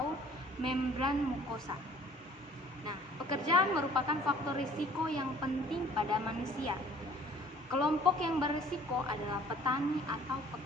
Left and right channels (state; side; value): normal; both; correlation 0.53